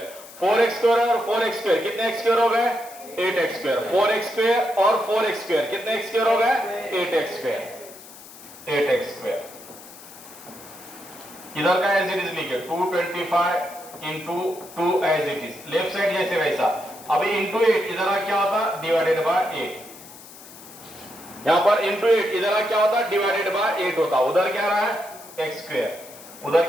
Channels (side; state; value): left; noise; hiss, 18 dB below the sound